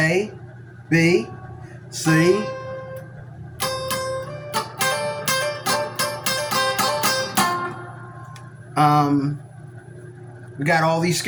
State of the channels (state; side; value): identical; both; correlation 1.00